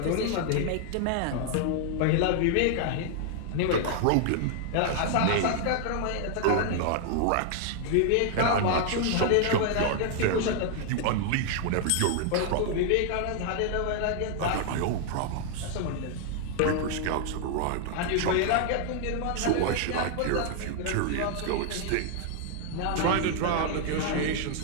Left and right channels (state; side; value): different; both; correlation 0.00